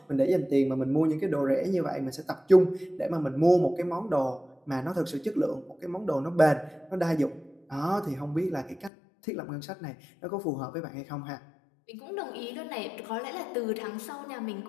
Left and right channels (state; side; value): drops out; right; at 8.9 s